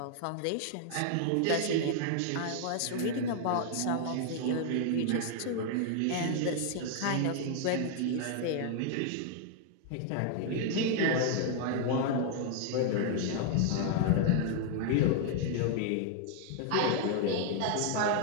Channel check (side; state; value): both; different; correlation 0.00